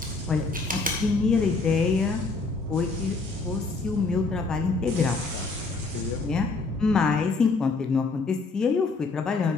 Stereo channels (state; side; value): quieter; right; 3.9 dB